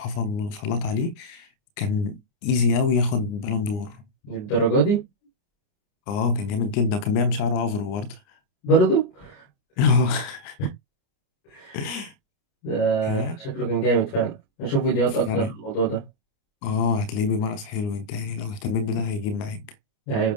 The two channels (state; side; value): late; right; 29 ms